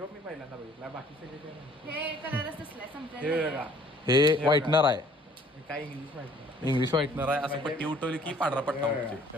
पहिल्यांदा बघितला, बाकी सगळे हे कलरच असलाय, संपलाय. हे व्हाईटनर आहे. काय इंग्लिश माहिती नाही. इंग्लिश व्हाईटनर आहे. असं पट्टी उठवली की पांढरा पट्टा उठते. हे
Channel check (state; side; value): normal; both; correlation 0.56